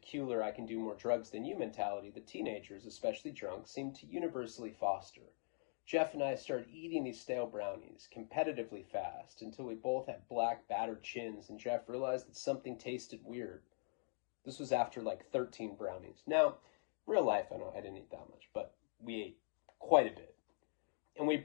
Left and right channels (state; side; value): silent; right; digital silence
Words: I can do more drugs than you mentality that teenagers, especially drunk, seem to universally foster. Jeff and I started eating these stale brownies competitively fast until we both had black, battered chins, and Jeff realized that something tasted weird. This was after like 13 brownies. Now, real life, I didn't eat that much, but we ate quite a bit. And we